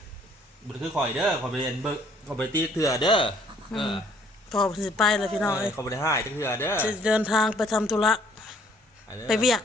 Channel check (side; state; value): both; normal; correlation 0.61